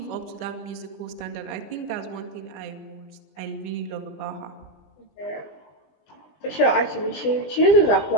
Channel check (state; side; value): late; right; 20 ms